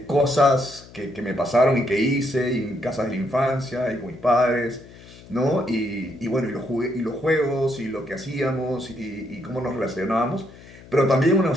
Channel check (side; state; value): left; noise; hum, 20 dB below the sound